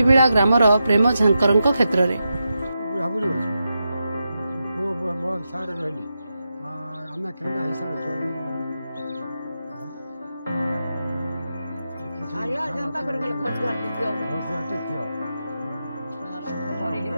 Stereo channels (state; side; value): inverted; both; correlation -0.88